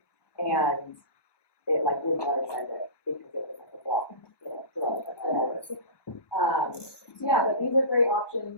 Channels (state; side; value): late; right; 1.2 ms